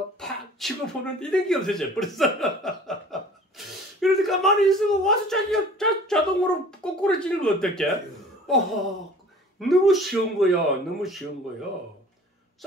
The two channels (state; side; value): normal; both; correlation 0.47